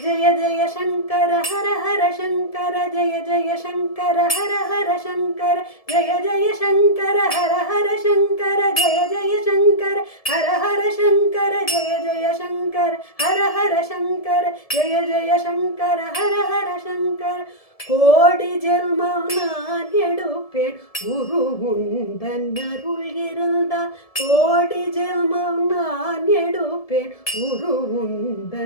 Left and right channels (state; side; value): late; right; 1.7 ms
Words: ஜெய சங்கர ஹர ஹர சங்கர, ஜெய ஜெய சங்கர ஹர ஹர சங்கர, ஜெய ஜெய சங்கர ஹர ஹர சங்கர, ஜெய ஜெய சங்கர ஹர ஹர சங்கர, ஜெய ஜெய சங்கர ஹர ஹர சங்கர, ஜெய ஜெய சங்கர ஹர ஹர சங்கர. கோடி ஜென்மம் நான் எடுப்பேன் குரு உந்தன் அருள் இருந்தால், கோடி ஜென்மம் நான் எடுப்பேன் குரு